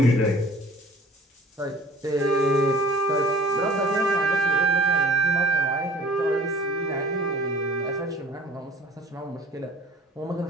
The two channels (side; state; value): both; normal; correlation 0.49